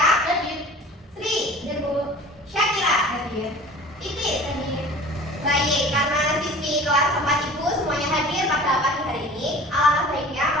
Hadir. Sri. Hadir Bu. Syakira. Hadir. Titis. Hadir. Baik, karena siswi kelas 4 Ibu semuanya hadir pada pagi hari ini, alangkah baiknya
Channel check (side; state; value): both; normal; correlation 0.43